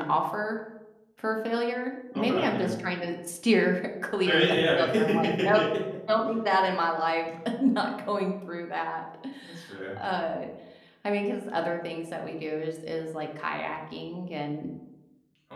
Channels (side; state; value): both; identical; correlation 1.00